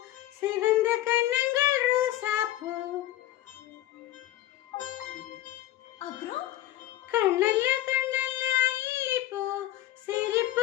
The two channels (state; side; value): quieter; right; 14.4 dB